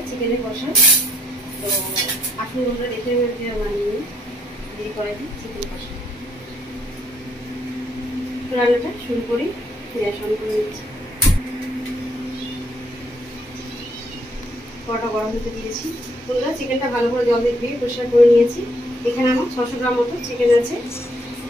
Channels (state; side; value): normal; both; correlation 0.70